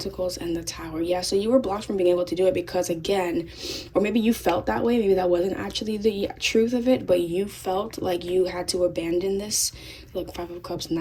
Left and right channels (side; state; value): both; identical; correlation 1.00